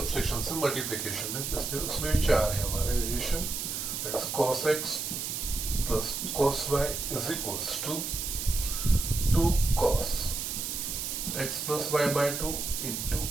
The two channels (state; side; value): noise; right; hiss, 3 dB below the sound